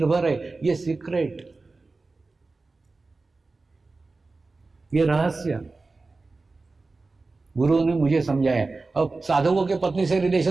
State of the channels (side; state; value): left; quieter; 3.6 dB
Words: है। ये सीक्रेट, ये रहस्य गुरुओं ने मुझे समझाया। अब साधकों के पत्नी से